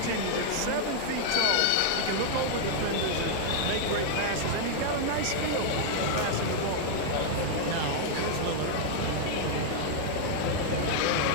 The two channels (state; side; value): different; both; correlation -0.01